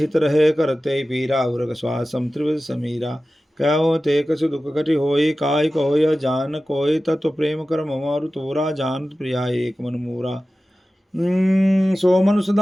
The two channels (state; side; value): normal; both; correlation 0.95